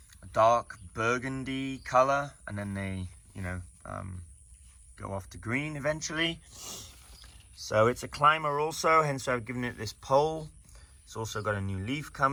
dark burgundy color, and then they, go off to green eventually. So it's a climber also, hence I've given it this pole. It's also got a new leaf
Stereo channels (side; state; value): both; identical; correlation 1.00